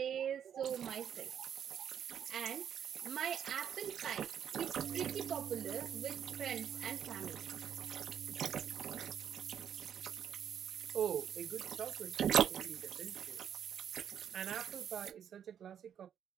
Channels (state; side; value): quieter; left; 8.9 dB